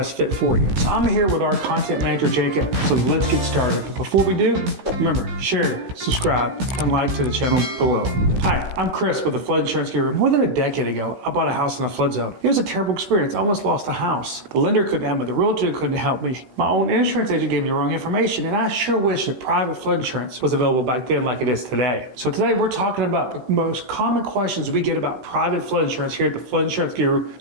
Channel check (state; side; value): late; left; 16 ms